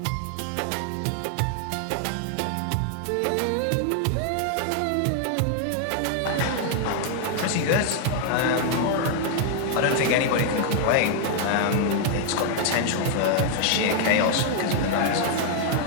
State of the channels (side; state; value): both; different; correlation 0.00